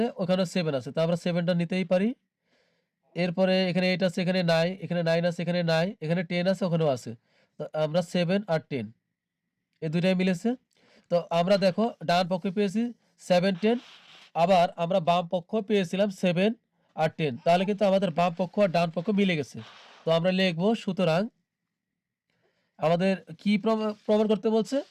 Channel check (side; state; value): both; identical; correlation 1.00